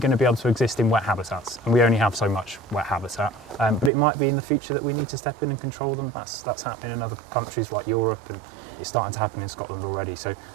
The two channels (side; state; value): left; drops out; at 3.9 s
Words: to be able to exist in wet habitats, and we only have so much wet habitat. But it might be in the future that we need to step in and control them. That's happening in other countries like Europe, and it's starting to happen in Scotland already. So